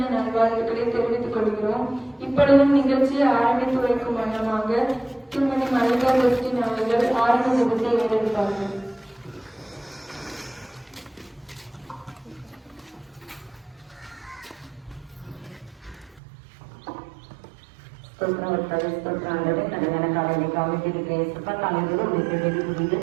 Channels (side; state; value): left; drops out; at 16.2 s